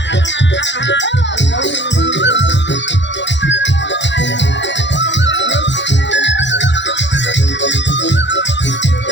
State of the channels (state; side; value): late; right; 0.52 ms